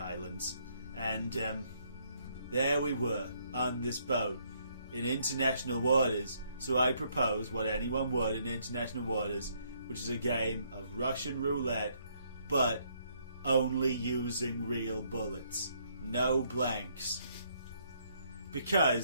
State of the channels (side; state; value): both; inverted; correlation -0.70